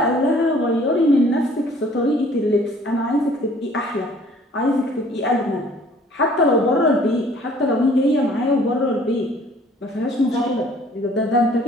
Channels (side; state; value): both; normal; correlation 0.55